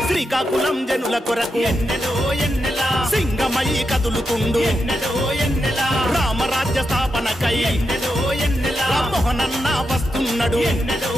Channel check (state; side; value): normal; both; correlation 0.86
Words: శ్రీకాకుళం జనుల కొరకు ఎన్నెలో ఎన్నెల సింగమై కదులుతుండు ఎన్నెలో ఎన్నెల రామరాజ్య స్థాపనకై ఎన్నెలో ఎన్నెల రామ్మోహనన్న వస్తున్నాడు ఎన్నెలో